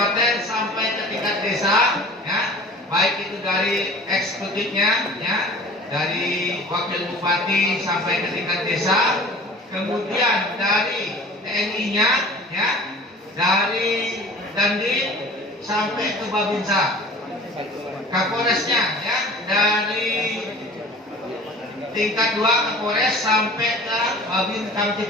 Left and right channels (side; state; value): both; normal; correlation 0.44